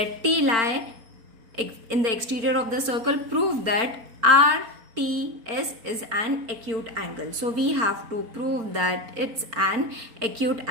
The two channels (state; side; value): late; left; 4.4 ms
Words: T lie in the exterior of the circle. Prove that RTS is an acute angle. So we have to prove that it's an acute